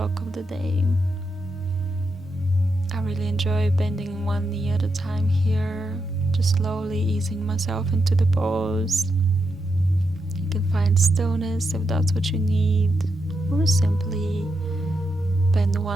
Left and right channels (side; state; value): both; normal; correlation 0.84